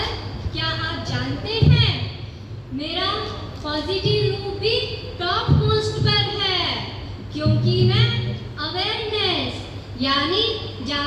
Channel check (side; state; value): both; identical; correlation 1.00